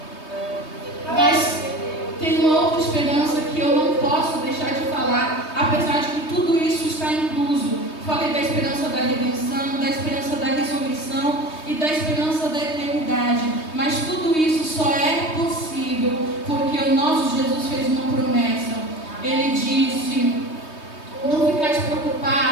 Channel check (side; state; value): right; late; 3.2 ms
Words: Mas tem uma outra esperança que eu não posso deixar de falar, apesar de que tudo isso está incluso. Falei da esperança da redenção, da esperança da ressurreição e da esperança da eternidade. Mas tudo isso só é possível porque o nosso Jesus fez uma promessa. Ele disse: não ficais